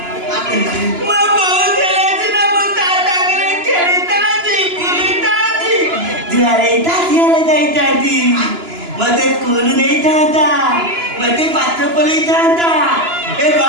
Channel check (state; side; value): late; left; 2.9 ms